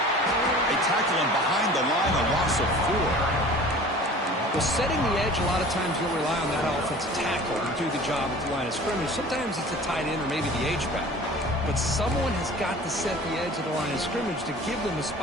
They tackle him behind the line, a loss of 4. Well, setting the edge, a lot of times you'll rely on that offensive tackle to do the job at the line of scrimmage. Sometimes it's a tight end or maybe the H-back. But someone has got to set the edge of the line of scrimmage to give them a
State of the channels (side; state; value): both; normal; correlation 0.43